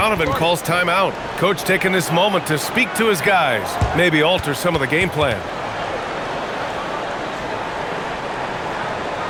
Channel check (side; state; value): both; identical; correlation 1.00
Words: calls timeout. Coach taking this moment to speak to his guys, maybe alter some of the game plan.